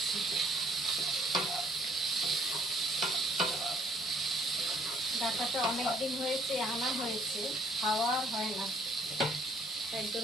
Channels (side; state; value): both; normal; correlation 0.62